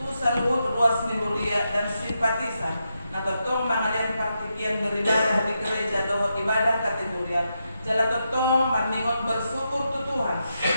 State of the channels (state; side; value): inverted; both; correlation -0.85